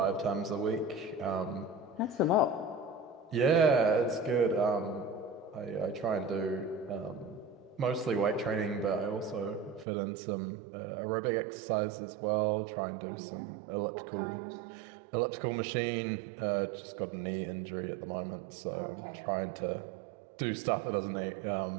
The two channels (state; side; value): drops out; left; at 9.9 s